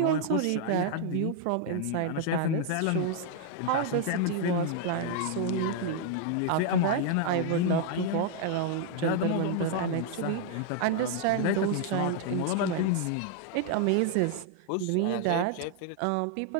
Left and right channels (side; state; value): both; different; correlation 0.00